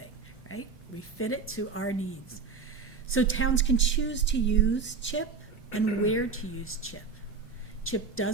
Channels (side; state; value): left; quieter; 5.0 dB